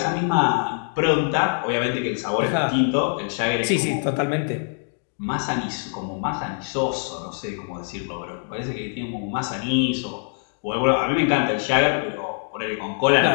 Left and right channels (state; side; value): silent; right; 57 dB below the other